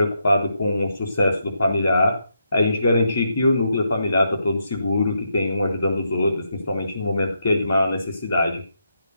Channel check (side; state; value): both; inverted; correlation -0.81